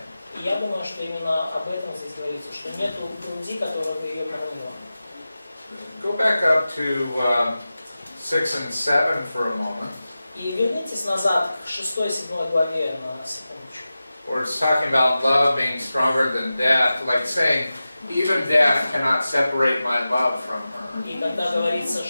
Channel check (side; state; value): both; inverted; correlation -0.94